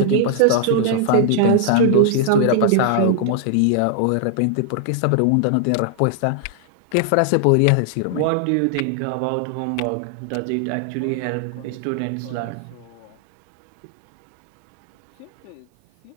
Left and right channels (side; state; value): both; different; correlation 0.00